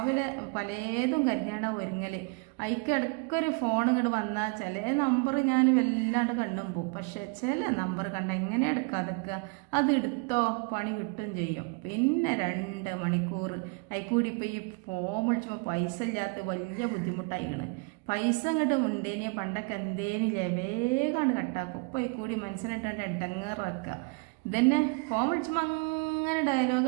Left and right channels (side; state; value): left; quieter; 32.2 dB